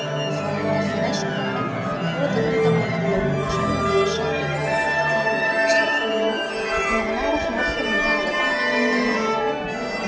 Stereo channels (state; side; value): identical; both; correlation 1.00